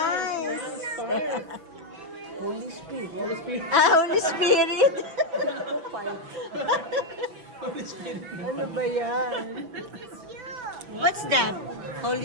Holy Spirit. Holy Spirit. Holy Spirit! Holy Spirit. Ano ba yan? What's that?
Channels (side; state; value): left; late; 6.0 ms